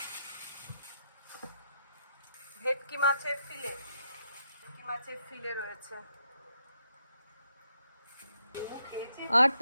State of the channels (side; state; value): both; inverted; correlation -0.79